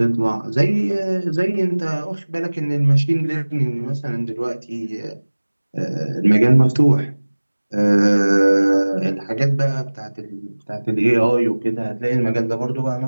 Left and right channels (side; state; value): both; inverted; correlation -1.00